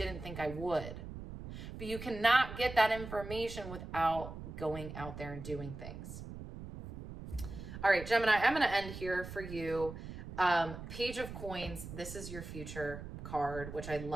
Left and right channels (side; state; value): right; noise; rumble, 10 dB below the sound